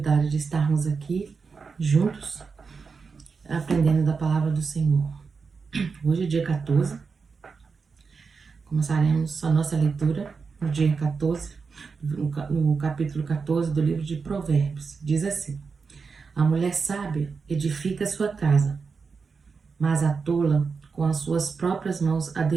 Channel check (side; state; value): left; quieter; 5.1 dB